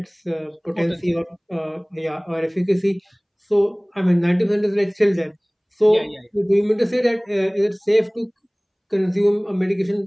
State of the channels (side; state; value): both; identical; correlation 1.00